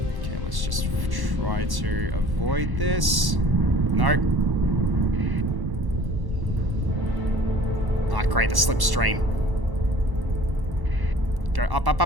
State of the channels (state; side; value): late; left; 1.1 ms